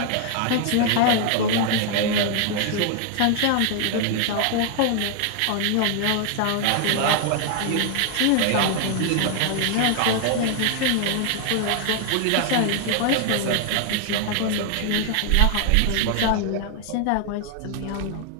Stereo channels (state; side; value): different; both; correlation 0.00